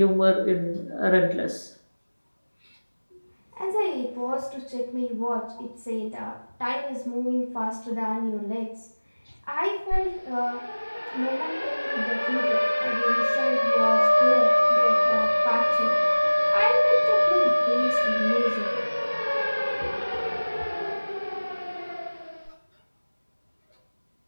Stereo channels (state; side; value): inverted; both; correlation -1.00